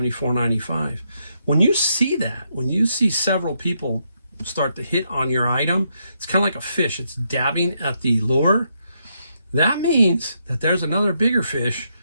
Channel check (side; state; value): both; inverted; correlation -0.78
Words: When you see that, when you see several people start to hit on your item, it's kind of like a fish. It's dabbing at the lure. That means that there's another bigger fish